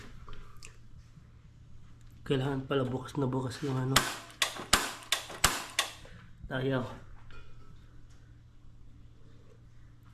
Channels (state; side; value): identical; both; correlation 1.00